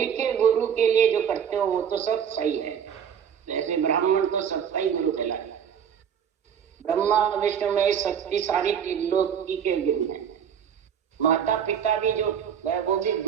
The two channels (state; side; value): quieter; left; 8.1 dB